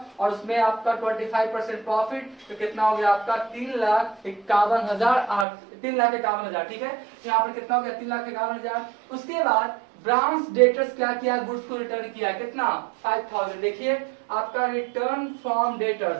और उसमें आपका 25% प्रॉफिट, तो कितना हो गया आपका 3,51,000, ठीक है। यहाँ पर कितना हो गया 3,51,000। उसके बाद ब्रांच डेटर्स क्या किया, गुड्स को रिटर्न किया कितना 5,000। देखिए आपका रिटर्न फ्रॉम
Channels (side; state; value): left; drops out; at 5.5 s